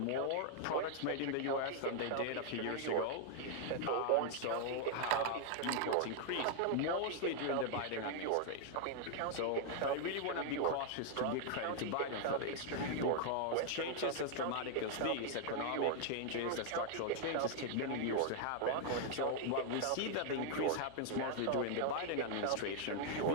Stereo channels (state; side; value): different; both; correlation -0.01